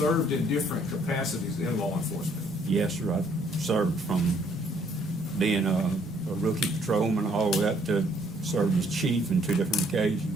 in different capacities in law enforcement? Yes, sir. I've served from being a rookie patrolman all the way up to served as chief on 2 different occasions.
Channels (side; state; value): both; normal; correlation 0.65